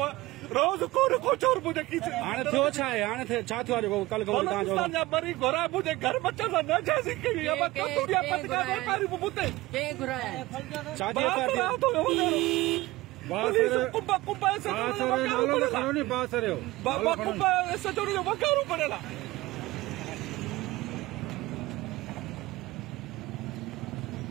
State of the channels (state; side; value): quieter; left; 19.4 dB